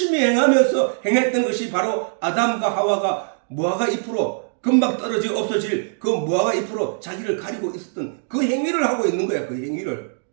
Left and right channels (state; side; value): silent; left; digital silence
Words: 행했던 것이 바로 아담과 하와가 무화과 잎으로 금방 떨어져 없어질 그 무화과 잎으로 자기를 가리고 있었던 그 행위를 하고 있는 거야. 그 행위를.